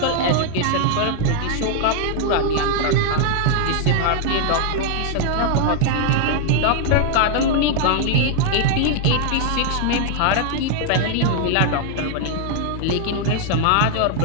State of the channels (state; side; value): different; both; correlation 0.00